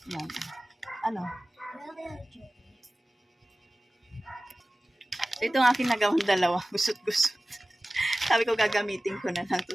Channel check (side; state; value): both; normal; correlation 0.96